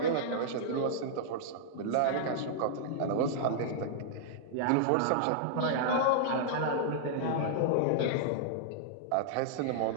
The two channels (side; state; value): both; different; correlation -0.02